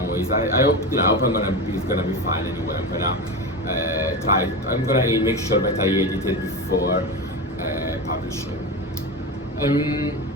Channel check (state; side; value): normal; both; correlation 0.22